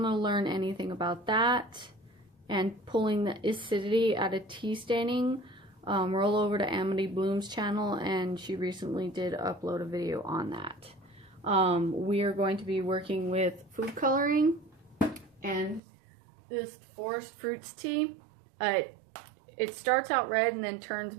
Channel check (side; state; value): left; drops out; at 15.8 s